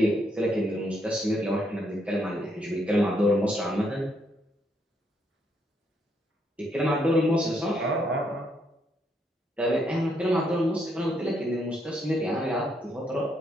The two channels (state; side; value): normal; both; correlation 0.74